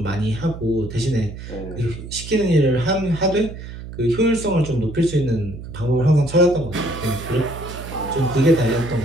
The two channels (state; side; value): noise; right; hum, 11 dB below the sound